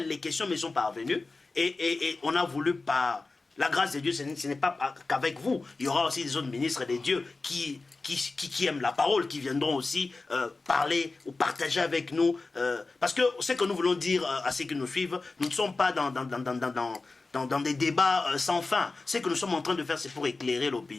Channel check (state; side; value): quieter; right; 3.6 dB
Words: les questions me sont parvenues et on a voulu par la grâce de Dieu, ce n'est pas qu'avec vous. Il y aura aussi des autres ministres de Dieu qui aiment la parole, qui viendront aussi parler ou partager avec nous. Parce que ce que nous voulons dire à ceux qui nous suivent, nous ne sommes pas dans des débats sans fin. Ce que nous sommes en train de faire, c'est pour éclairer